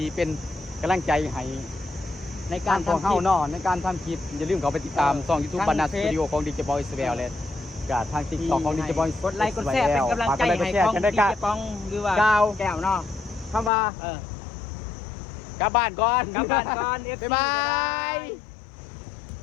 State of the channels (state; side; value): drops out; right; at 13.7 s